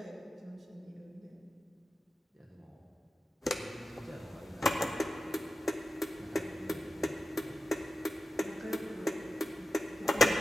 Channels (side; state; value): both; normal; correlation 0.93